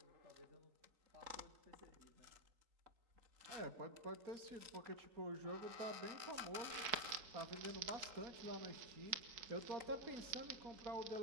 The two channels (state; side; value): late; left; 3.9 ms